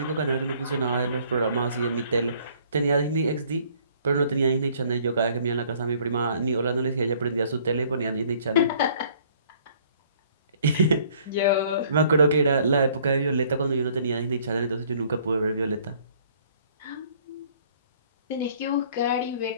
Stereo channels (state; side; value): inverted; both; correlation -0.59